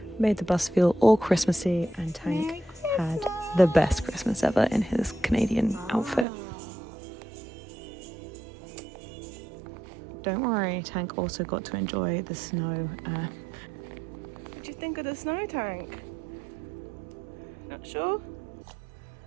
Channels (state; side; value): drops out; left; at 6.2 s